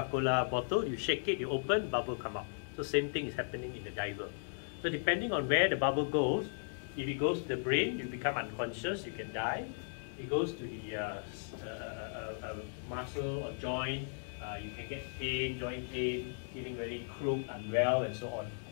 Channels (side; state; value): right; silent; digital silence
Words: bottle, you shake it, you open, bubble come out. So same thing is happening in the diver. So depending on where the bubble goes, if it goes to the brain, you become unconscious, you can die. If it goes to the muscle or joint, you can get pain, joint pain, feeling very crooked, unwell, and so on.